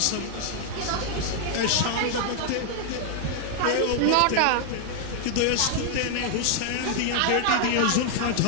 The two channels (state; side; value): different; both; correlation 0.00